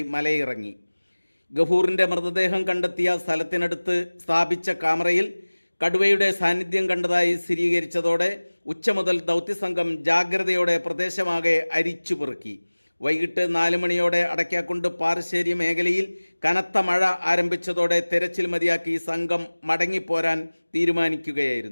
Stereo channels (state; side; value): inverted; both; correlation -1.00